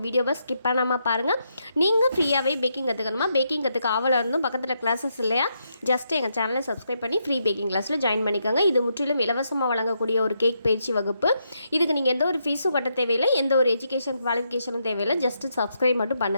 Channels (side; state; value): both; inverted; correlation -0.80